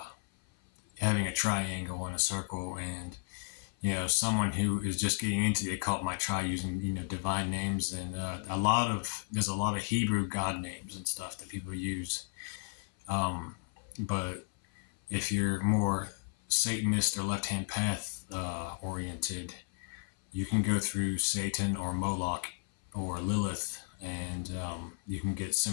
having a triangle and a circle, and someone who is just getting into the occult might try using divine names, and there's a lot of Hebrew god names and stuff that people use. But if you're more Satanist or left-hand path oriented, you can go through Satan or Moloch or Lilith, and you can get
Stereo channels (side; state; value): right; silent; 55 dB below the other